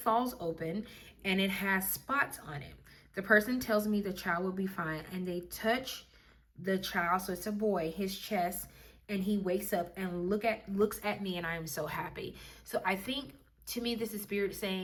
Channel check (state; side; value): identical; both; correlation 1.00